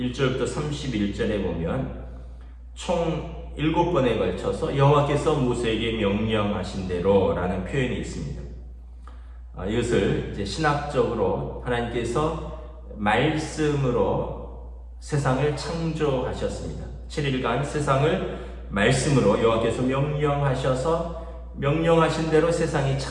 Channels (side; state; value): both; identical; correlation 1.00